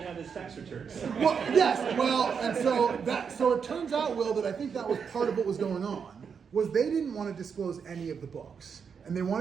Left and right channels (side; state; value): left; quieter; 6.4 dB